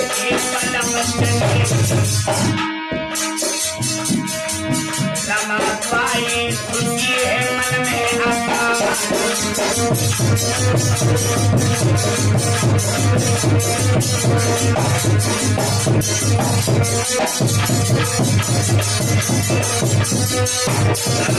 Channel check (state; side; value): identical; both; correlation 1.00